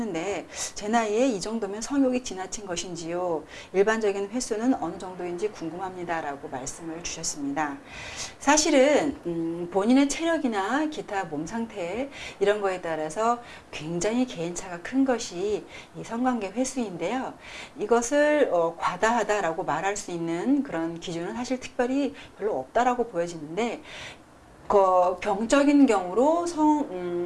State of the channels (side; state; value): both; identical; correlation 1.00